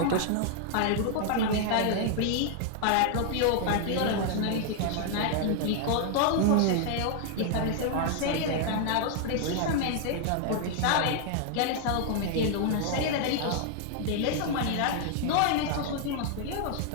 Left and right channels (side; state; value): both; different; correlation 0.00